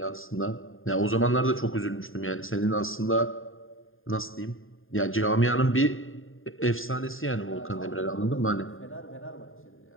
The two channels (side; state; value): right; late; 0.59 ms